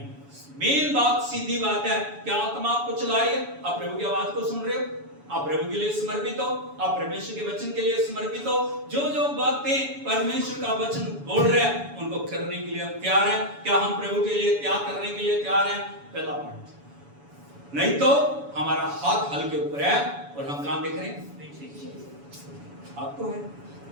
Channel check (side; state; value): left; late; 7.1 ms